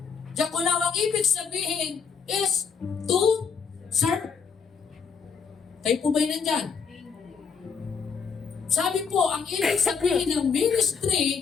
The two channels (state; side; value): quieter; right; 6.0 dB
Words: diakonao ang ibig sabihin is to serve. Kayo po ba'y nandyan? Sabi po, ang ibig sabihin ng